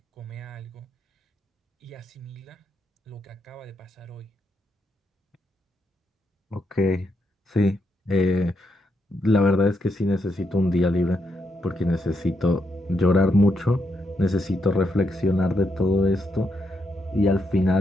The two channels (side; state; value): both; normal; correlation 0.80